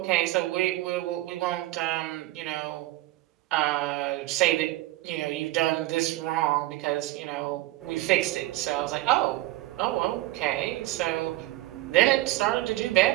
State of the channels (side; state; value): left; quieter; 17.3 dB